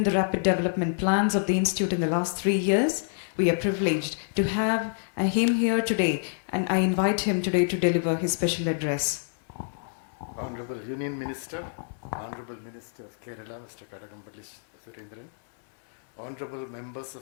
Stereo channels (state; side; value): silent; right; 60 dB below the other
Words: the rapid development plans of the institute in the last 3 years. We are privileged to have him here today, and I invite him today to deliver his special address. Honorable Union Minister, Honorable Minister of Kerala, Mr. Kadagambally Surendran, Honorable Members